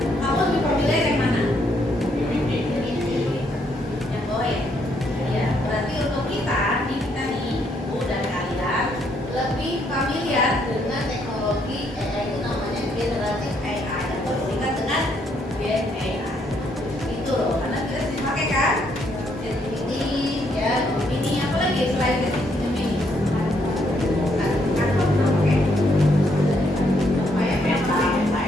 Kamu lebih familiar yang mana? Yang bawah ya? Ya, berarti untuk kita nih, Ibu dan kalian lebih familiar dengan teknologi AI itu namanya generatif AI atau disingkat dengan Gen AI. Itu loh, karena kita sering pakai kan? ChatGPT, ya, Gemini, apa lagi selain ChatGPT Gemini? Canva pernah pakai? Selain apa?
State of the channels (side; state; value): both; normal; correlation 0.72